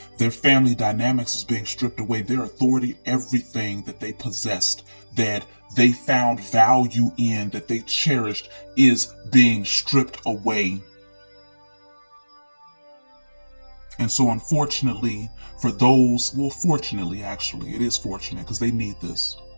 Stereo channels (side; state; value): both; inverted; correlation -1.00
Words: Their family dynamics is being stripped away. Their authority, everything that they possessed, that they found value in, that they cherished, is being stripped away. And so unfortunately, for those, well, fortunately, actually, it is fortunate because they need this.